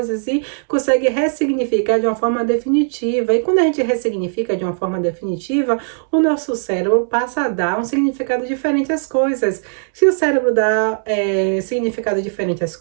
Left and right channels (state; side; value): silent; left; digital silence